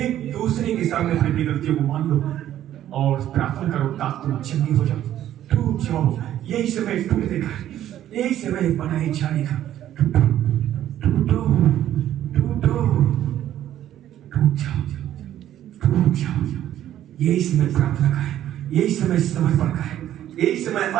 दूसरे के सामने अपनी गलतियों को मान लो और प्रार्थना करो ताकि तुम चंगी हो जाओ, टूट जाओ। यही समय टूटने का, यही समय बनाए जाने का। टूटो टूटो टूटो, टूट जाओ, टूट जाओ। यही समय प्रार्थना का है, यही समय समर्पण का है, यही समय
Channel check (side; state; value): left; quieter; 12.0 dB